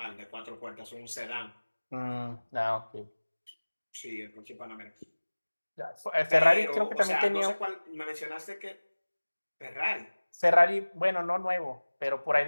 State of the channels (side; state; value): both; inverted; correlation -1.00